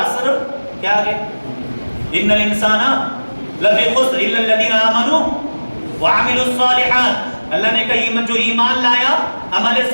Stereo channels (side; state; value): both; inverted; correlation -1.00